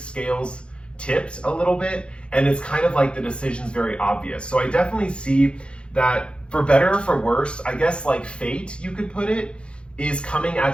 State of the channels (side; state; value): right; late; 0.057 ms